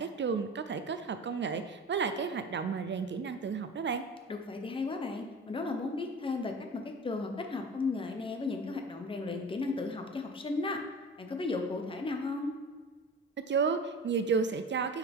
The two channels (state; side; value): normal; both; correlation 0.35